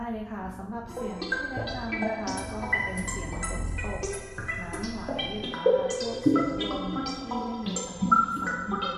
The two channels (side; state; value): both; identical; correlation 1.00